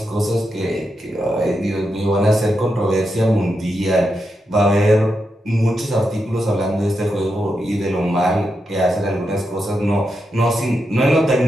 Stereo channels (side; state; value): both; normal; correlation 0.86